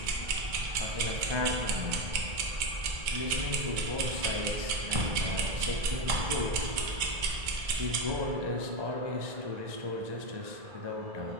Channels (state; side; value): late; left; 2.2 ms